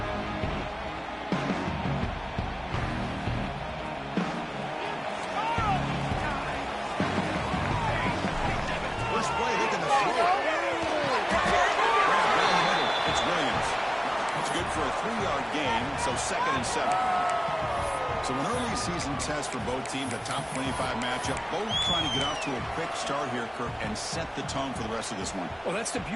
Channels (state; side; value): identical; both; correlation 1.00